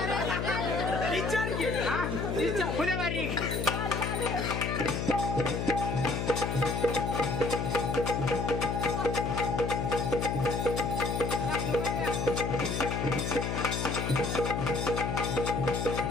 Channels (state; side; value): noise; left; hum, 1 dB below the sound